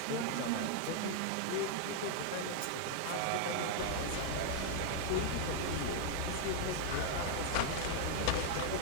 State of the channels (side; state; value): both; different; correlation 0.00